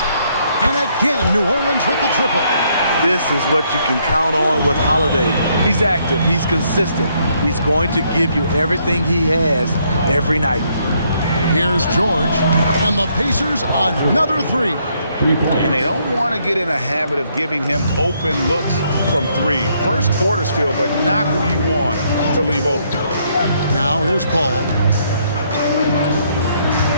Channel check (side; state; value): both; inverted; correlation -0.71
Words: And again, New Orleans with the triple. This is what you can count on with Holiday. He's active, he's consistent. He's going to give you everything he has every night. Here's George, and the Pacers another 3. And they don't want to get in a habit of giving him open looks from 3. First quarter's feel, but not who you want to leave open. Now here's Paul.